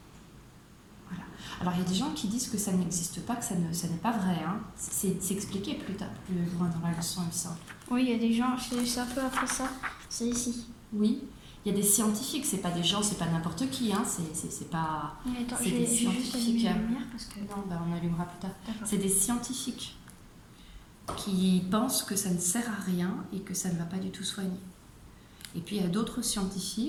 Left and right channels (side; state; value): both; identical; correlation 1.00